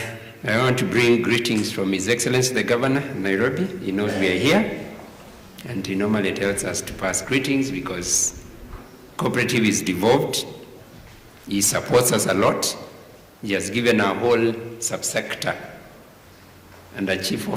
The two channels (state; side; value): identical; both; correlation 1.00